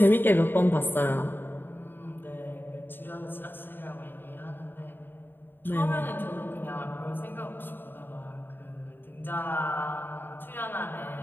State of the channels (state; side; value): late; right; 0.096 ms